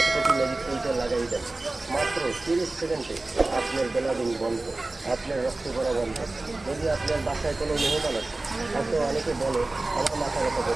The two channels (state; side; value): quieter; left; 3.0 dB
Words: কোটি ম্যাজিক তেলটা লাগাই দেন। মাত্র 30 সেকেন্ডে আপনার বেলাদিন বন্ধ, আপনার রক্ত পড়া বন্ধ। যদি আপনার বাসায় কোনো মেহমান আছে, হয়তো অনেকে বলে আমার মাথা ব্যথা